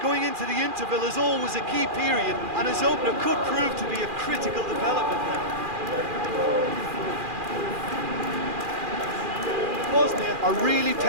going into the interval is always a key period, and his opener could prove to be a critical development now. Bosnia are really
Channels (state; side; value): late; left; 2.4 ms